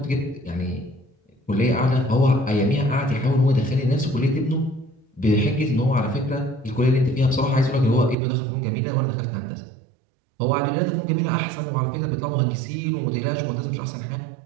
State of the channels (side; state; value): left; drops out; at 8.2 s